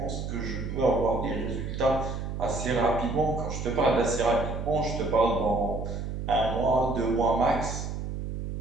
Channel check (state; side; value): noise; right; hum, 5 dB below the sound